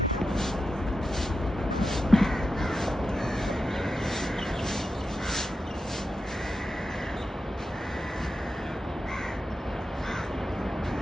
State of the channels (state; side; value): normal; both; correlation 0.89